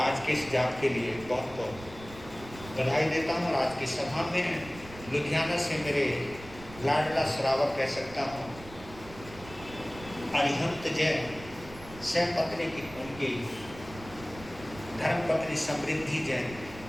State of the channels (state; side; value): noise; right; rumble, 16 dB below the sound